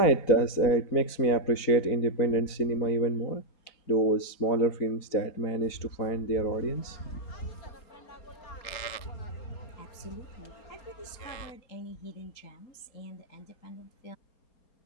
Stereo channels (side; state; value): right; late; 4.3 ms